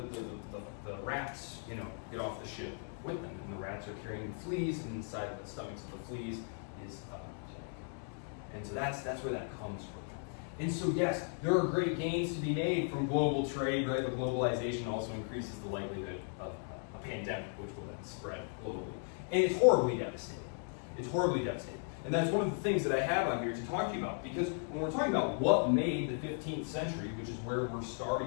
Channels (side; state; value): right; silent; 53 dB below the other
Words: the rats, get off the ship with them, and the rats are carrying fleas, and inside of the stomachs of the fleas is plague. And so that's where that comes from. And so yes, there are great gains to be made from global trade, right? But globalization also increases the likelihood of a pandemic, which will then spread globally. And it's horribly devastating. It's horribly devastating. And that's one of the things that I have on here to talk to you about, because when we're talking about what made the 15th century, which is where we're